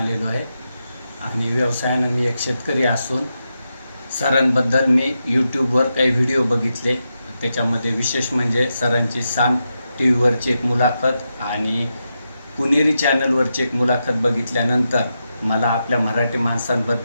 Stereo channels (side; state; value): both; inverted; correlation -0.87